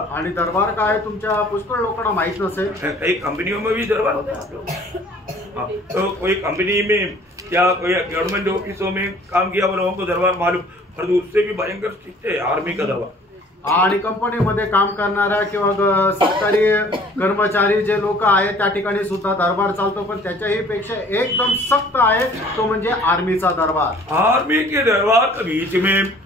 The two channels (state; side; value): normal; both; correlation 0.53